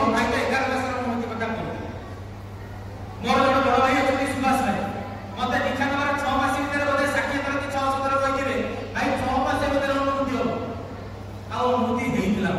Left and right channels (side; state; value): both; identical; correlation 1.00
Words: ଭାଇ ତ 11 ମାସର ଅନୁଭୂତି କଥା କହୁଥିଲେ। ମୋର ଜଣେ ବଡ ଭାଇ ଅଛନ୍ତି ସୁଭାଷ ଭାଇ, ମତେ ଦୀକ୍ଷା ନେବାର 6 ମାସ ଭିତରେ ବୋଧେ 60 ଥର କି 600 ଥର କହିଥିବେ ଭାଇ 6 ମାସ ଭିତରେ ଅନୁଭୂତି ହବ। ଆଉ ଅନୁଭୂତି ହେଇଥିଲା।